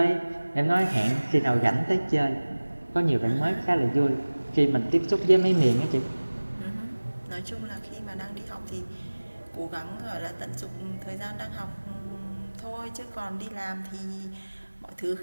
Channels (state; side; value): inverted; both; correlation -1.00